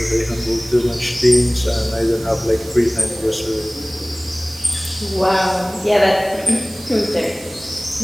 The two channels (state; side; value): noise; right; hiss, 18 dB below the sound